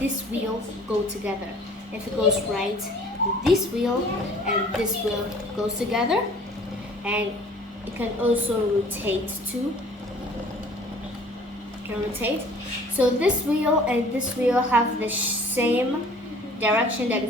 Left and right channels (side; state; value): both; normal; correlation 0.51